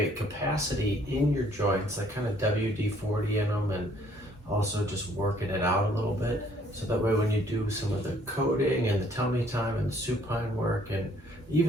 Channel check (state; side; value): normal; both; correlation 0.62